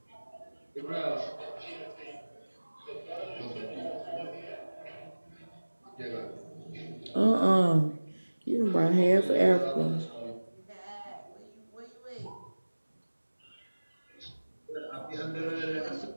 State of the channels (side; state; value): both; inverted; correlation -1.00